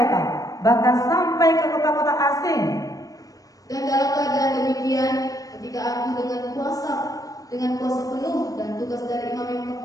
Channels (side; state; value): right; late; 0.17 ms